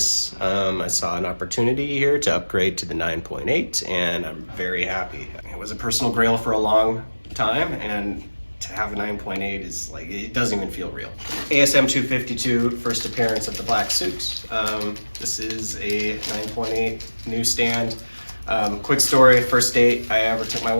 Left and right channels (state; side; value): inverted; both; correlation -1.00